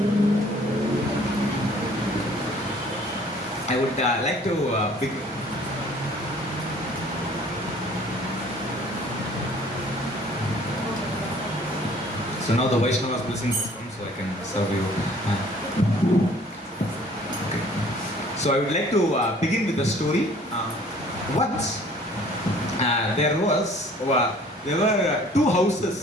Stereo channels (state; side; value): normal; both; correlation 0.54